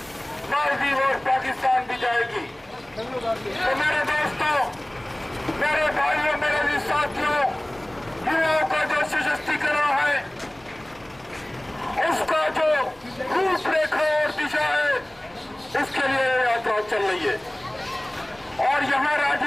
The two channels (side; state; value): right; noise; hum, 30 dB below the sound